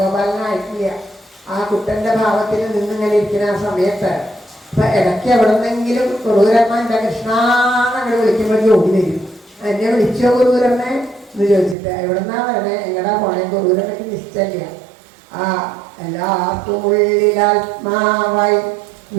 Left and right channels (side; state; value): left; drops out; at 11.8 s